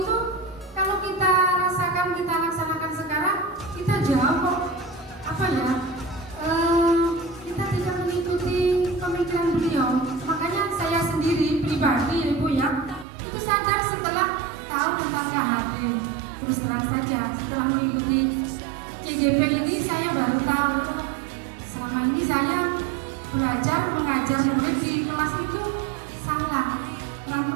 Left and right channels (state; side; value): drops out; left; at 13.1 s